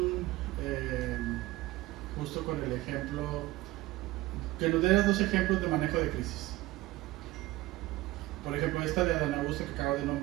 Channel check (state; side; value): quieter; left; 18.2 dB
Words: justo con el ejemplo, que nos dieras dos ejemplos de manejo de crisis. Por ejemplo, esta de Adán Augusto que acabo de